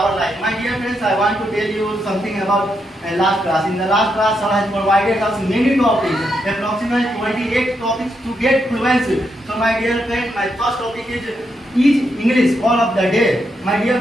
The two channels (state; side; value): normal; both; correlation 0.81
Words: life. My dear friends, I want to tell you something about last class. In the last class, sir has provided us many topics, approximately 28 topics to get fluency. So my dear friends, my first topic is English call of the day. My dear